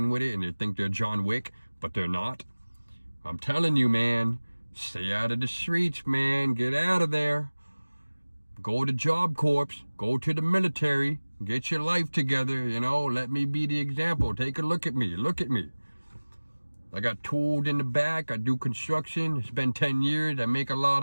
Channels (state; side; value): inverted; both; correlation -1.00